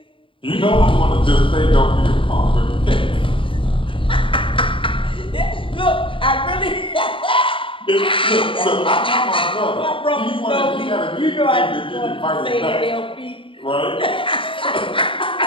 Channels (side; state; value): right; late; 0.25 ms